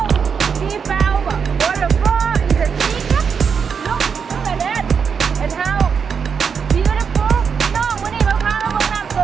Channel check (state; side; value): quieter; left; 6.4 dB